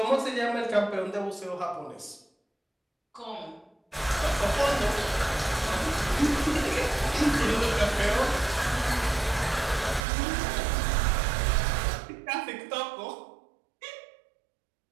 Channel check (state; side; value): drops out; left; at 10.0 s